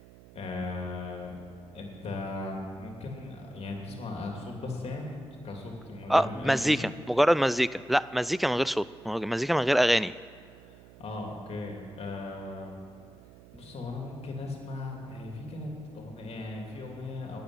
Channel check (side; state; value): right; noise; hum, 21 dB below the sound